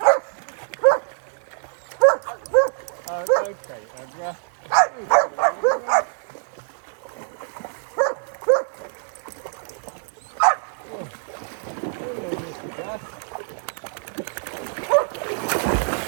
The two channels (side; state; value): left; silent; 62 dB below the other